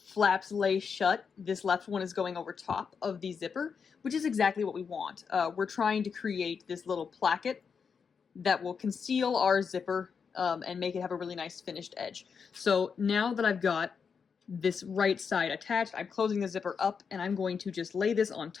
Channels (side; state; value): right; quieter; 6.1 dB